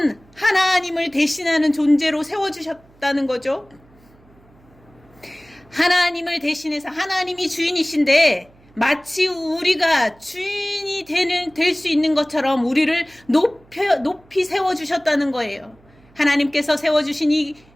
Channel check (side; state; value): right; noise; hum, 29 dB below the sound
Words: 하나님을 대신하는 존재로 세워주셨다는 거죠. 하나님을 대신해서, 하나님이 주인이신데 마치 우리가 주인이 될 수 있는 것처럼 우리를 높이 세워주셨다는 거예요. 하나님께서 세워주신 이